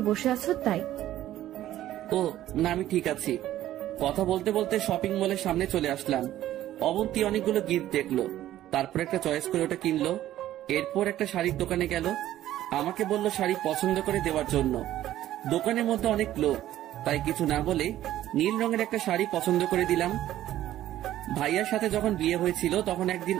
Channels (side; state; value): left; quieter; 13.4 dB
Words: বসে আছো তাই। ও না, আমি ঠিক আছি। কথা বলতে বলতে শপিং মলের সামনে চলে আসলাম। অবন্তী অনেকগুলো গিফট দেখলো, তারপর একটা চয়েস করে ওটা কিনলো। এরপর একটা শাড়ির দোকানে গেল। আমাকে বলল শাড়ি পছন্দ করে দেওয়ার জন্য। দোকানের মধ্যে অনেক লোক, তাই কিছু না বলে নীল রঙের একটা শাড়ি পছন্দ করে দিলাম। ভাইয়ার সাথে যখন বিয়ে হয়েছিল তখন একদিন